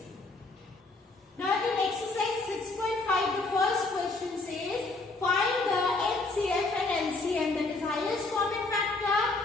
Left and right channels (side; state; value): right; quieter; 3.3 dB